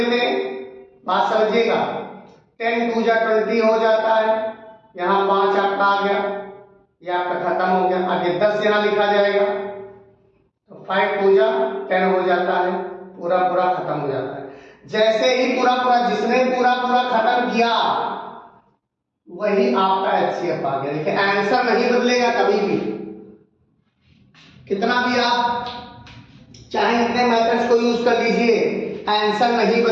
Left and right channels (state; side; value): identical; both; correlation 1.00